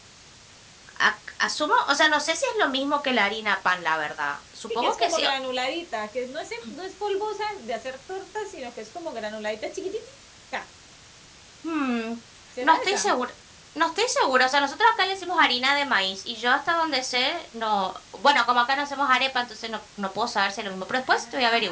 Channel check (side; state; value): both; identical; correlation 1.00